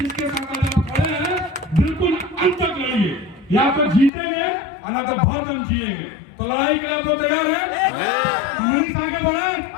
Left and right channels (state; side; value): drops out; right; at 4.1 s